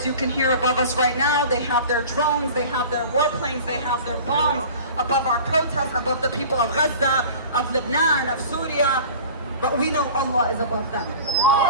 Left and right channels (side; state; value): both; inverted; correlation -0.39